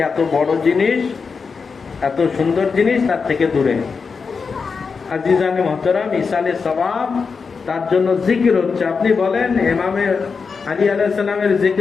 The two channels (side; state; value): right; quieter; 5.2 dB